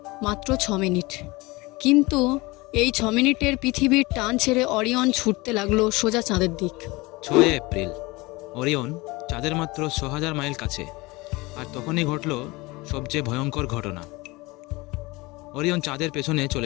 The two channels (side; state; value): right; quieter; 23.0 dB